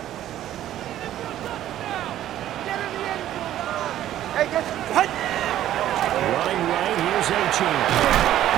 Hey, get hut. Running right, here's Achane.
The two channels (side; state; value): left; quieter; 12.5 dB